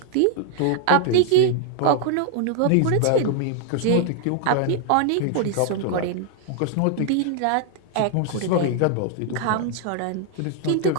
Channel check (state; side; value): different; both; correlation 0.00